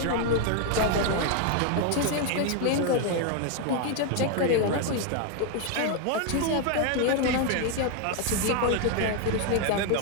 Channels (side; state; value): both; different; correlation 0.01